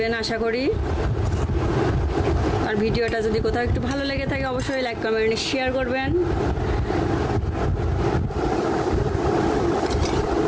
আশা করি। আর ভিডিওটা যদি কোথাও একটু ভালো লেগে থাকে অবশ্যই লাইক কমেন্ট শেয়ার করবেন।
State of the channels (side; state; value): both; identical; correlation 1.00